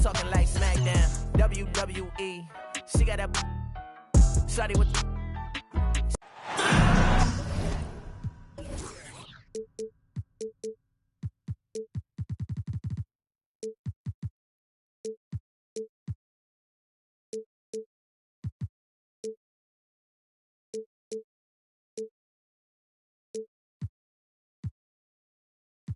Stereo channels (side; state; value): both; identical; correlation 1.00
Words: talking like SmackDown, WWE. She got that, shawty with the.